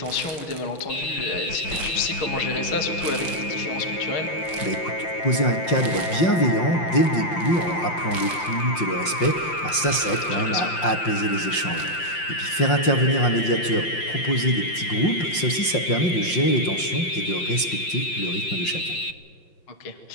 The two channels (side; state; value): right; late; 5.7 ms